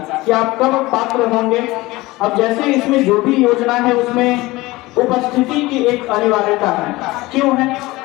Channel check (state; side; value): quieter; right; 20.2 dB